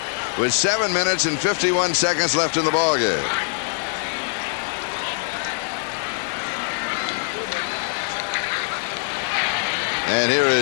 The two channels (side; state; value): right; silent; 64 dB below the other